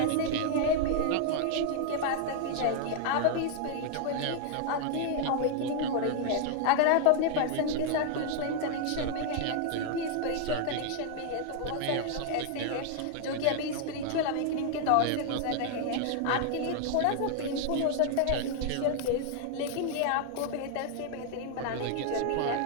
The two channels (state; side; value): different; both; correlation 0.00